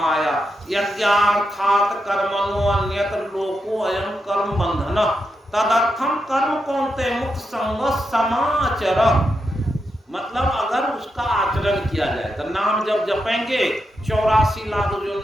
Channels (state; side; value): normal; both; correlation 0.85